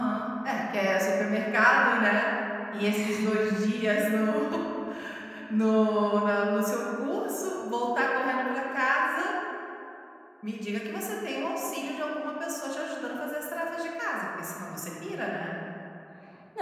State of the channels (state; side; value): identical; both; correlation 1.00